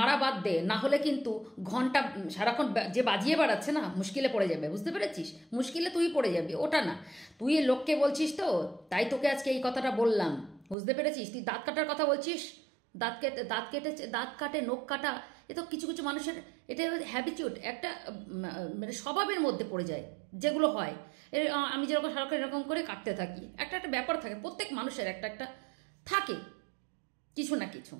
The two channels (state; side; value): drops out; left; at 10.8 s